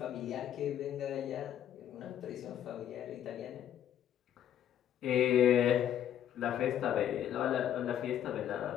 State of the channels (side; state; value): right; quieter; 10.4 dB